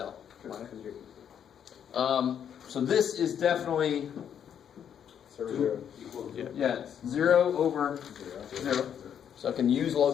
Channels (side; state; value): right; quieter; 8.7 dB